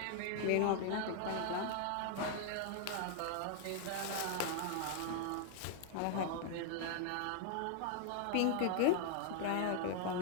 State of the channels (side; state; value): both; different; correlation 0.00